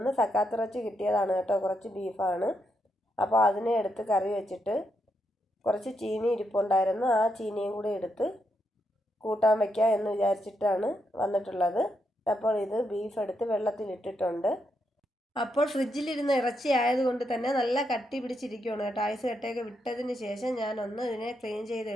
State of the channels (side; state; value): both; normal; correlation 0.81